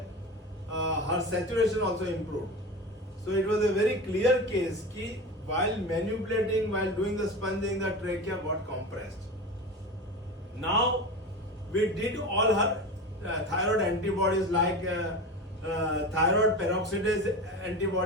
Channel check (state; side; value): normal; both; correlation 0.27